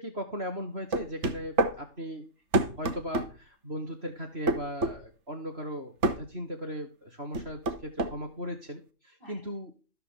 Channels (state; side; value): late; left; 3.4 ms